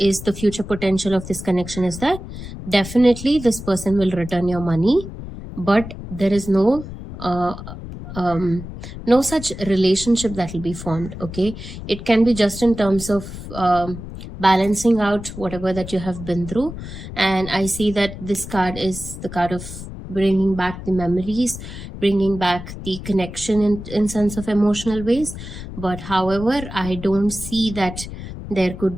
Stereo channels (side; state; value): left; noise; rumble, 11 dB below the sound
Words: the future potential of this connection is that definitely this person will return your money, but there is no such relationship that will be formed. Okay, it can be just in terms of balancing out whatever that you have been through, and I see that this card is the card of bringing back the memories, bringing back the connection in sense of emotional ways. But however, I don't see that there